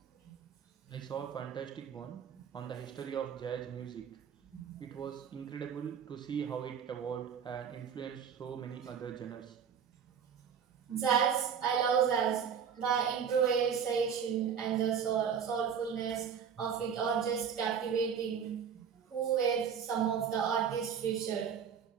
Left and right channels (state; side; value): quieter; left; 7.5 dB